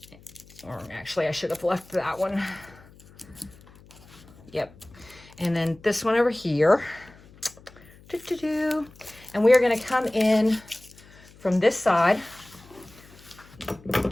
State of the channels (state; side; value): noise; left; hum, 24 dB below the sound